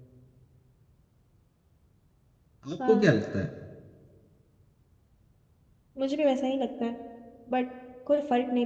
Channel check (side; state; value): both; identical; correlation 1.00